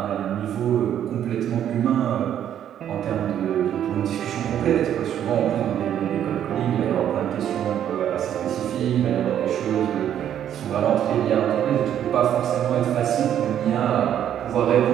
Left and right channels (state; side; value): quieter; left; 10.2 dB